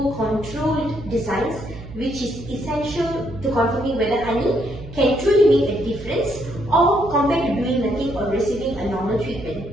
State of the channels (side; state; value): right; noise; hum, 13 dB below the sound